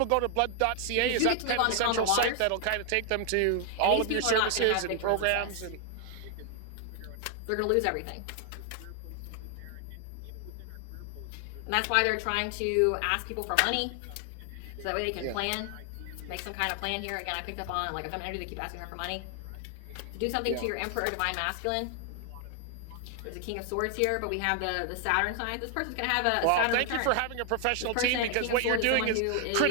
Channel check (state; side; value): different; both; correlation 0.00